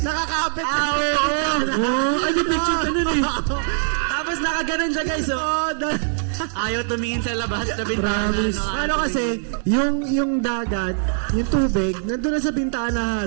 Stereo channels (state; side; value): silent; left; digital silence